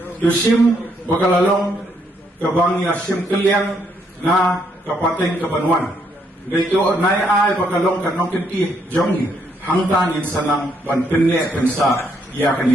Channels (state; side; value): normal; both; correlation 0.73